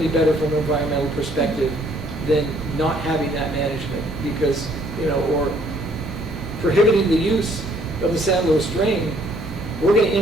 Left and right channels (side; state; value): right; noise; hum, 14 dB below the sound